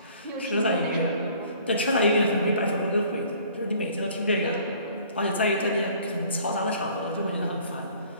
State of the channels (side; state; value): both; inverted; correlation -0.54